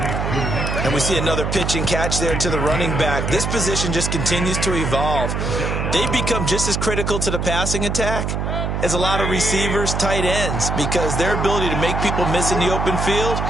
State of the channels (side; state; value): right; noise; hum, 1 dB below the sound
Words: And we see another pitch and catch there to the running back. This position just continues to evolve. They become just as critical to the passing attack as a lot of receivers, tight ends, because their ability to make people miss in the open field